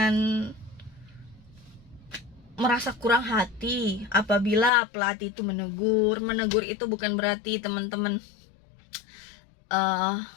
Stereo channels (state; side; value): drops out; right; at 4.7 s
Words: merasa kurang hati apabila pelatih itu menegur. Menegur itu bukan berarti teman-teman